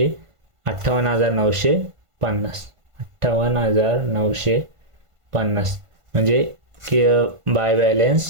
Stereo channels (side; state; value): left; late; 1.5 ms